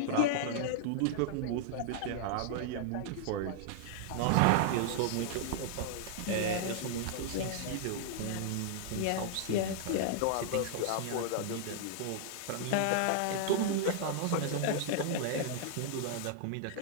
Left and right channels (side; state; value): both; different; correlation -0.01